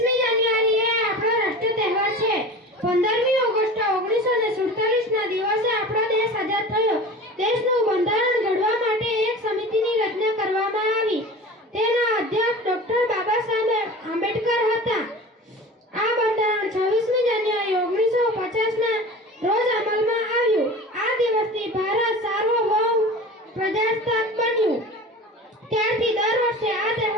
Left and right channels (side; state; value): both; normal; correlation 0.36